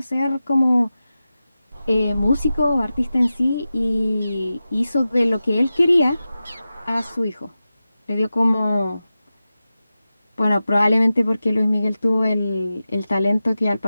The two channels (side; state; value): both; inverted; correlation -0.94